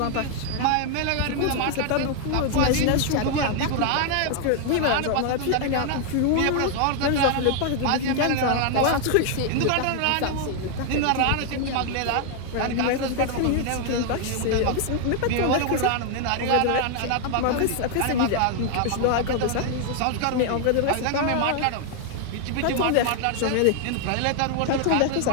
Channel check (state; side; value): different; both; correlation 0.00